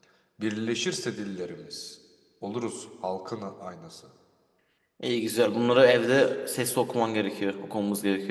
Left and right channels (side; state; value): both; identical; correlation 1.00